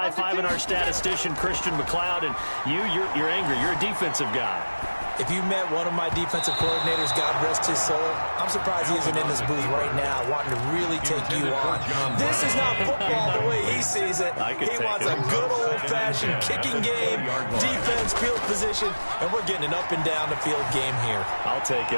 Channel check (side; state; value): both; inverted; correlation -1.00